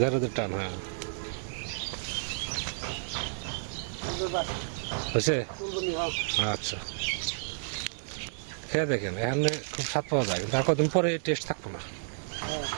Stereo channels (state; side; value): silent; left; 57 dB below the other